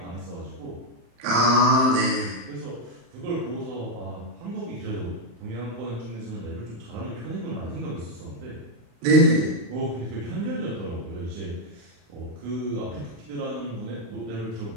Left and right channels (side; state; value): left; late; 35 ms